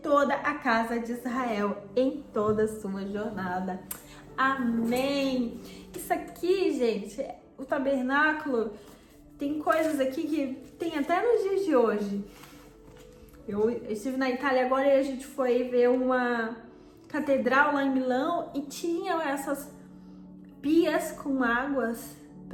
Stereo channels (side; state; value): both; identical; correlation 1.00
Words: a casa de Israel em toda a sua jornada. Amém! Isso aqui, gente, o tabernáculo, tem coisas aqui que tem até nos dias de hoje. Eu estive na Itália agora e a gente foi ver uma catedral lá em Milão e tinha essas pias com águas